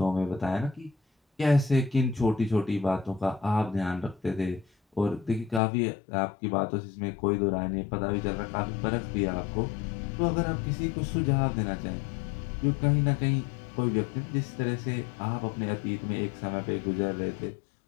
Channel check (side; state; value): right; drops out; at 5.6 s